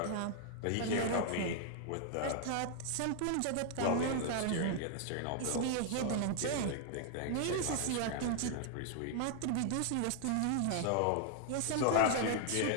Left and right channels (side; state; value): both; different; correlation 0.00